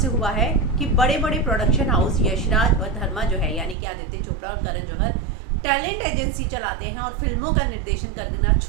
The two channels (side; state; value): left; drops out; at 3.8 s